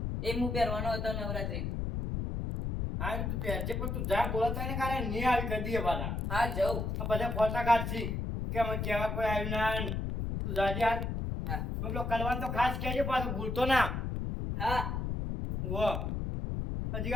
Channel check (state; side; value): noise; left; rumble, 2 dB below the sound